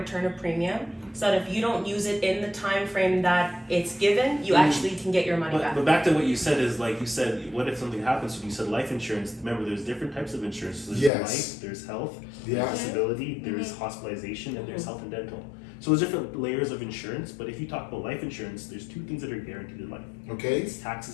of premium, so that if you don't use it in the time frame that it's given, you actually can get your money back. But back to what you said is, like you said, what if something happens to you? You said life insurance. Remember, there's different types of insurance. There's life, there's health, there's disability, there's hospitalization, and there's health and dental. So there's different layers of insurance, but if you talk about life insurance, there's two things that are guaranteed in life. Okay. It's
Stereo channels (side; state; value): right; drops out; at 11.1 s